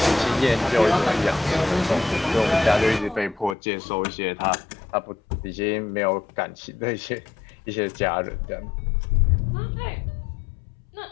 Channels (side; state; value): right; drops out; at 3.6 s